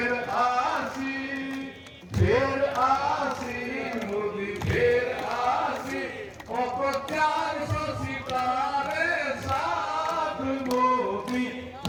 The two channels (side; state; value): both; identical; correlation 1.00